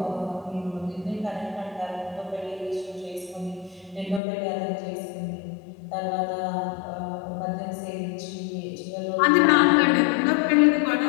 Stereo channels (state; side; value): drops out; right; at 4.2 s